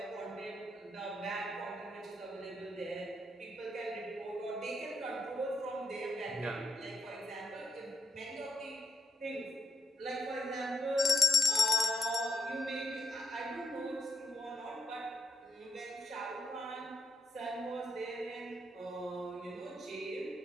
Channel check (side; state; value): both; normal; correlation 0.78